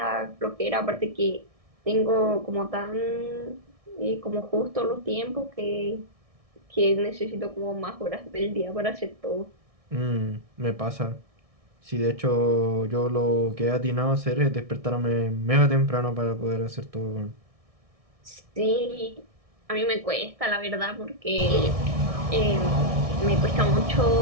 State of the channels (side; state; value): left; late; 1.6 ms